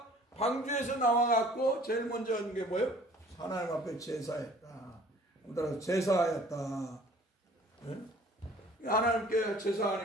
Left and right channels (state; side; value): normal; both; correlation 0.52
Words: 방주에서 나와갖고 제일 먼저 한 게 뭐예요? 하나님 앞에 제사했다. 따라서 제사하였다. 하나님께